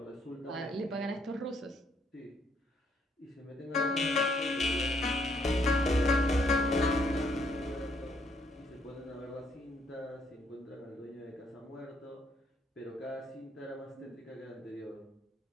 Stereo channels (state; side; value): normal; both; correlation 0.70